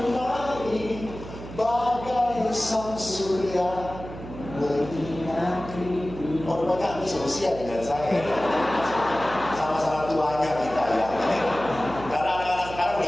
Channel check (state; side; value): noise; right; hum, 12 dB below the sound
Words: bagai sang surya menyinari. Oh, rupanya ini seusia dengan saya. Sama-sama tuanya kita ya. Karena anak-anak sekarang